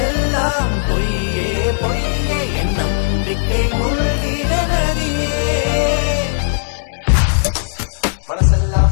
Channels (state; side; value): silent; right; digital silence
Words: பொய்யே பொய்யே என் நம்பிக்கை மூழ்கிட நதியே மனசெல்லாம்